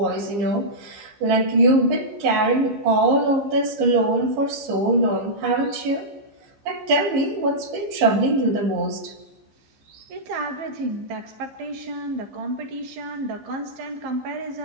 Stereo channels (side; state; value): left; late; 15 ms